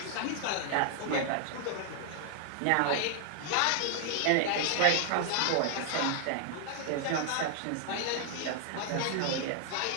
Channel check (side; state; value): both; different; correlation -0.01